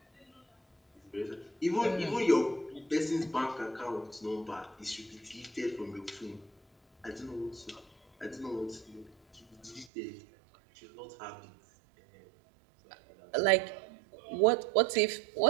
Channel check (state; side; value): drops out; left; at 9.9 s